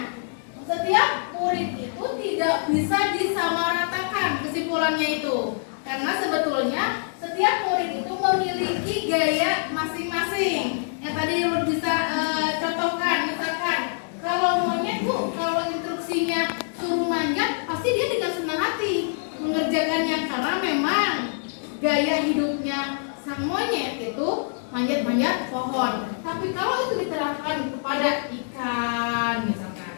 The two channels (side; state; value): right; silent; digital silence